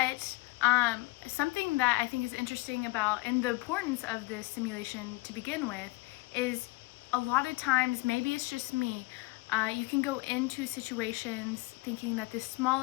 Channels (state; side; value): quieter; right; 23.3 dB